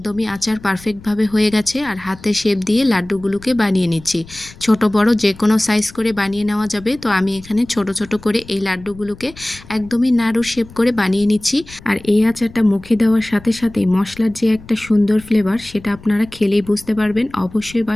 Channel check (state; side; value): noise; left; rumble, 20 dB below the sound